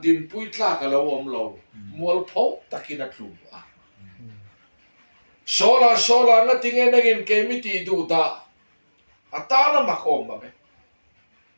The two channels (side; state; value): both; inverted; correlation -1.00